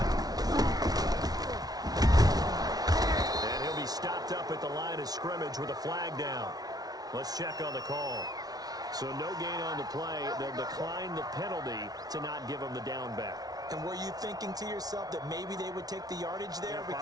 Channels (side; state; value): left; late; 0.19 ms